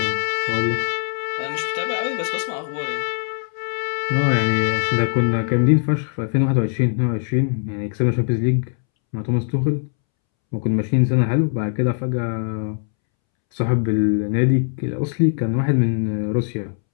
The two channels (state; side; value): silent; right; 65 dB below the other